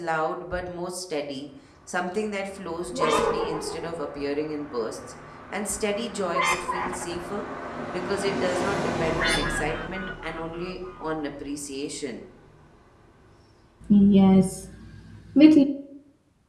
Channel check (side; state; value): both; identical; correlation 1.00